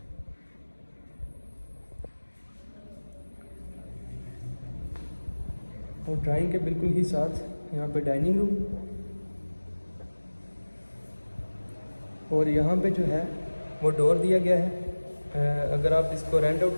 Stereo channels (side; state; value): both; inverted; correlation -1.00